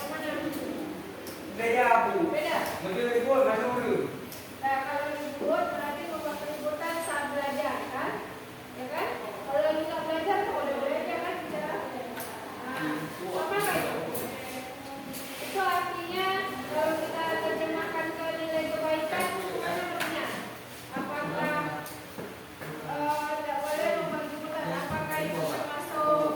Nah, kalau ribut berarti membuat keributan saat belajar, kan? Ya kan? Kalau lagi nggak belajar, kok udah belajar kan bicara? Nah, apa itu? Itu artinya kalau kita terjemahkan ke nilai kebaikan, mana artinya? Apakah tidak boleh membuat keributan? Apakah itu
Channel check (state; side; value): identical; both; correlation 1.00